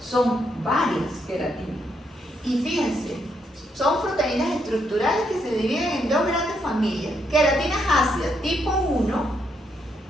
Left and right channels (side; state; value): both; normal; correlation 0.77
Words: son varias queratinas. Y fíjense, son proteínas estructurales que se dividen en dos grandes familias. Queratinas ácidas tipo 1,